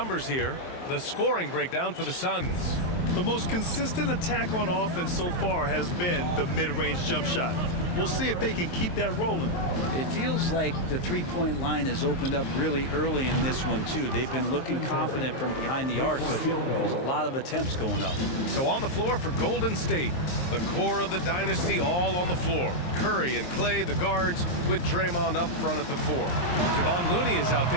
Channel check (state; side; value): late; right; 23 ms